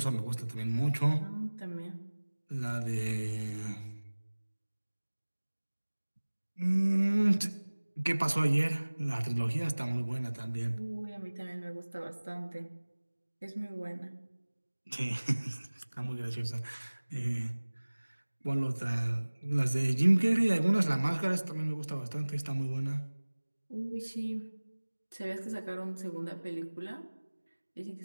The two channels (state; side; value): inverted; both; correlation -1.00